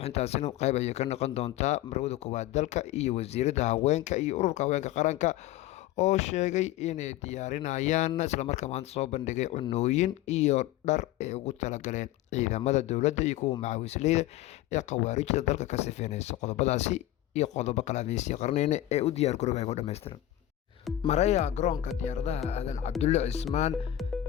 qayb ayay ka noqon doontaa marwada koowaad dalka iyo wasiirada haweenka iyo ururka haweenka qaranka oo sheegay inay diyaarinayaan islamarkaa maanta soo bandhigay cunooyin iyo dhar ay ugu talagaleen ciidamada dowladda iyo kuwa macawisleyda ee khawaarijda dalka ka sifeynaysa qodobadaasi iyo qodobo kale adeysii qarneyna ee u diyaar garooba ku dhammaystiran maraya garoonka diyaaradaha aadan cabdulle cismaan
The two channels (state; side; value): quieter; right; 13.8 dB